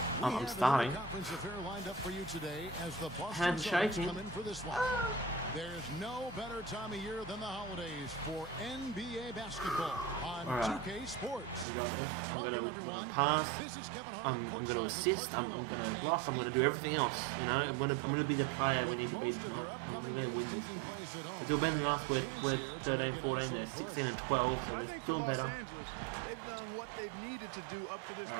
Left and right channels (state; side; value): drops out; left; at 11.7 s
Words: I'm starting. Hands shaking. There's no better time of year than the holidays for NBA basketball on 2K Sports. We got this. I'm gonna pass. I'm gonna assist. I'm gonna block. I'm gonna do everything else. You know, I'm gonna be the player we need to be. I'm gonna win this game. We're doing better than us. We're 13, 14. They're 16 and 12, so they're doing better. They've done what they've needed to do up to this point.